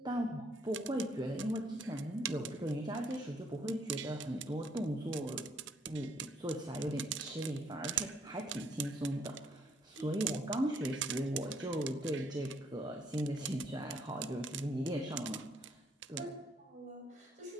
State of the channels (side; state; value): both; normal; correlation 0.68